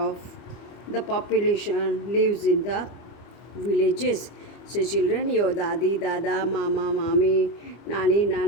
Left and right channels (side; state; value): right; late; 25 ms